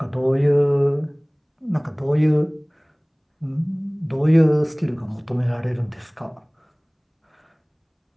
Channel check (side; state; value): both; identical; correlation 1.00